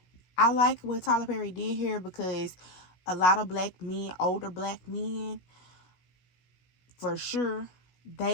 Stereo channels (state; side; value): late; right; 16 ms